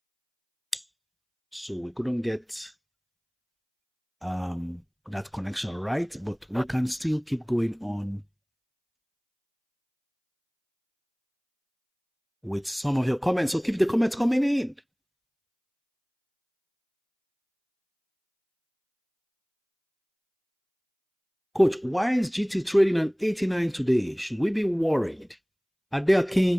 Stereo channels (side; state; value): both; identical; correlation 1.00